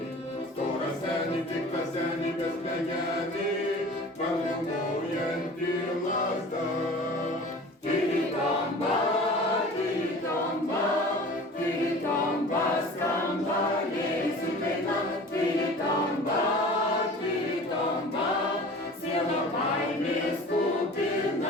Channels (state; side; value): normal; both; correlation 0.41